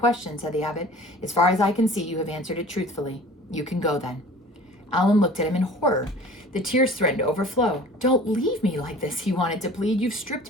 said the abbot. As far as I can see, you have answered it truthfully. You can go then. Alan looked at him in horror. The tears threatened to overflow. Don't leave me like this, he wanted to plead. You've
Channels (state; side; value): normal; both; correlation 0.44